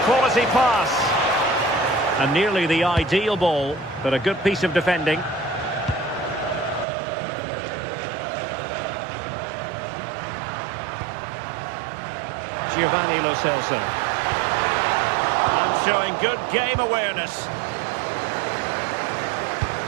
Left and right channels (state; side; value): drops out; left; at 6.9 s